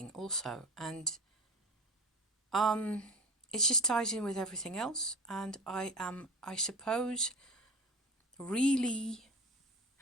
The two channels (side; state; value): both; normal; correlation 0.34